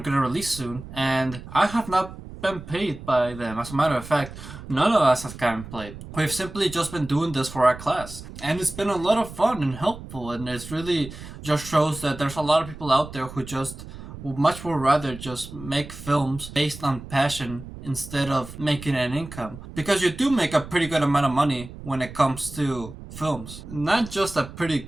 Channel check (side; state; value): right; noise; rumble, 13 dB below the sound